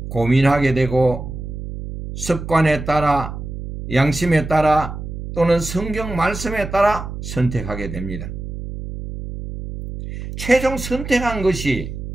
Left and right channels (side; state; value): right; noise; hum, 8 dB below the sound